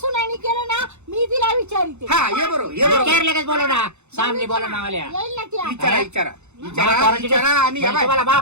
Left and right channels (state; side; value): late; left; 0.82 ms